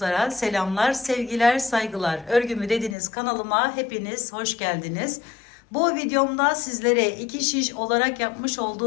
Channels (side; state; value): right; drops out; at 3.0 s